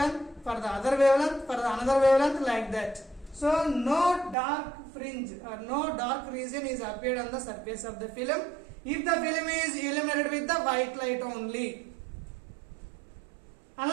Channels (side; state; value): left; drops out; at 4.4 s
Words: for the other wavelength, for the another wavelength, like that. So no dark fringe or no dark region is appeared on the surface of the film if the film is illuminated with the white light only.